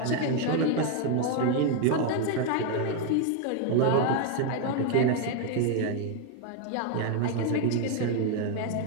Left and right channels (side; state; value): both; different; correlation 0.01